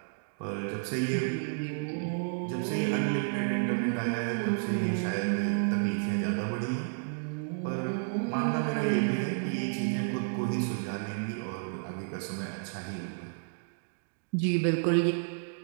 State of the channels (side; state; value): left; silent; digital silence